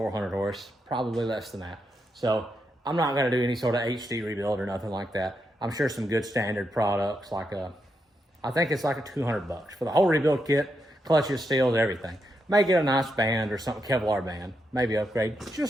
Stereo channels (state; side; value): normal; both; correlation 0.83